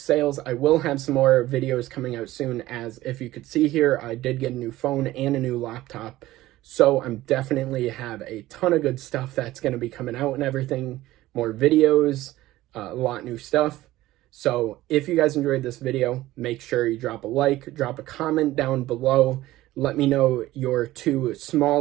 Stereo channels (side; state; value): left; quieter; 16.4 dB